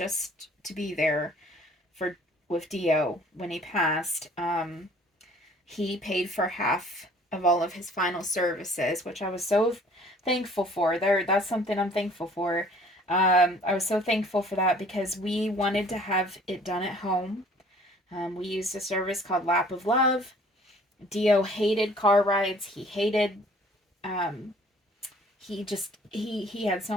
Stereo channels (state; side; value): normal; both; correlation 0.54